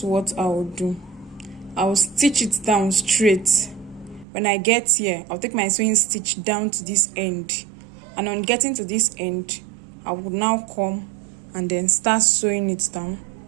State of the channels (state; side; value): drops out; left; at 4.2 s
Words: what I will do. I will stitch it down straight. When I get here, I'll take my sewing stitch down to this end, and on getting to this end, I will now come and then start sewing it down